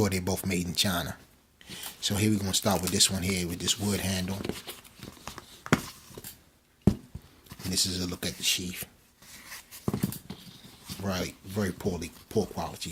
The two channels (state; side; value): identical; both; correlation 1.00